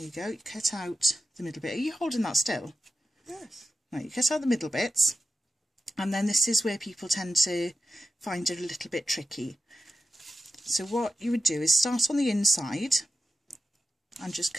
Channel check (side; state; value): both; normal; correlation 0.91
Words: you go, you cut out the middle bit. Are you holding that still? Yes. Right, you cut out the middle bits, and then this is where people tend to find it a little bit tricky. So what you would do is start on the inside and just